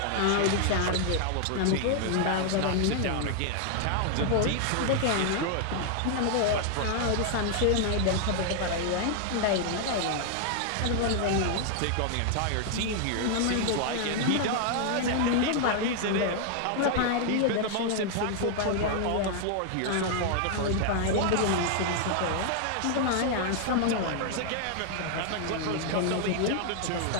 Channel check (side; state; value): both; different; correlation 0.00